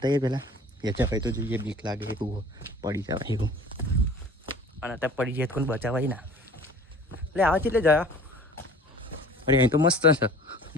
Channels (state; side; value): normal; both; correlation 0.45